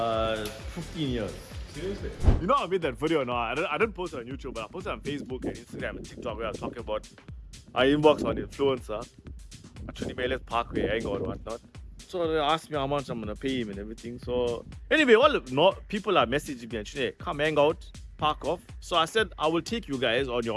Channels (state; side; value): identical; both; correlation 1.00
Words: years. Seriously? You know I made that video now. I didn't post it on YouTube, but I posted it on Facebook and Instagram and TikTok where I was talking about I inbox on influencer. Actually, Meles Parkway, hangout or whatnot. So they asked me how much I'm gonna pay him and everything. So anyway, all people are messaging me and saying, come hang out, park off. So I said I will take you guys on your